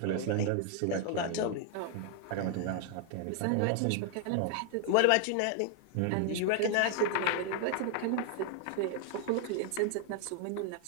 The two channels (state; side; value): different; both; correlation 0.00